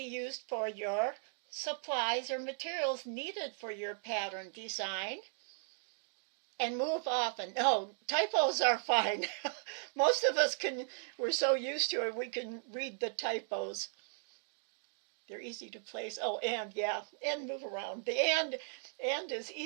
used for your supplies or materials needed for your pattern design. And move often. No, typos are fine. Most of us we're so used to it, we can read the typos. They're easy to place. Oh, and, yeah, and move around. The and is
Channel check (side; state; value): left; silent; digital silence